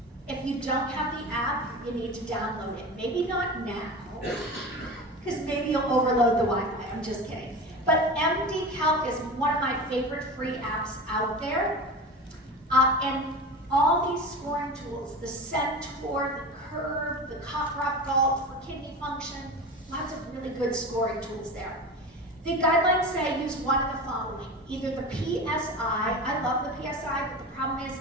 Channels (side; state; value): both; normal; correlation 0.30